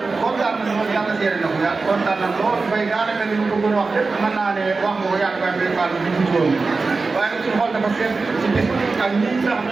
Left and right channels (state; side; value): quieter; left; 4.0 dB